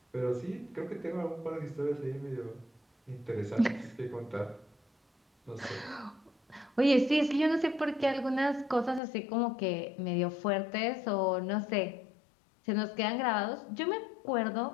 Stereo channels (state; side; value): drops out; right; at 9.0 s